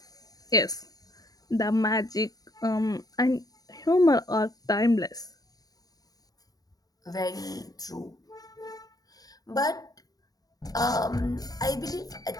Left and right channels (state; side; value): late; right; 0.18 ms